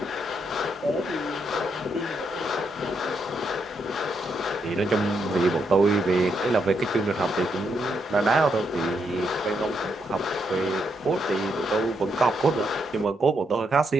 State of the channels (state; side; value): normal; both; correlation 0.79